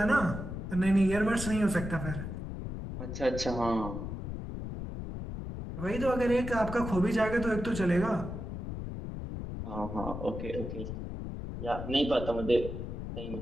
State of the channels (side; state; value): left; noise; rumble, 6 dB below the sound